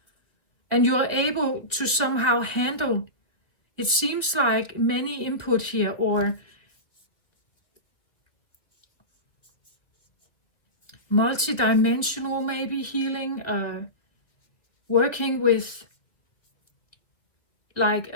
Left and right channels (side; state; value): right; late; 1.9 ms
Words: and you are able to somehow handle, it seems like many input here, or multi-dimensional maybe healing, working with